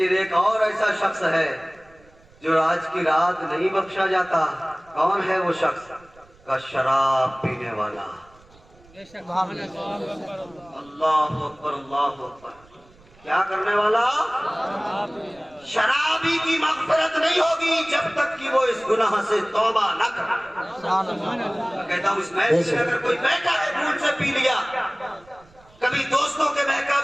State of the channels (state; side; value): noise; right; rumble, 28 dB below the sound